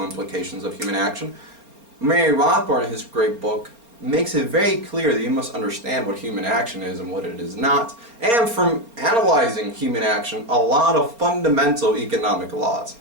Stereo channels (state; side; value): late; left; 4.3 ms